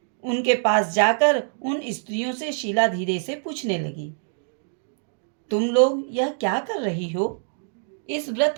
उनके पास जाकर उन स्त्रियों से शीला धीरे से पूछने लगी, तुम लोग यह क्या कर रही हो? इस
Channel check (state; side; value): silent; left; digital silence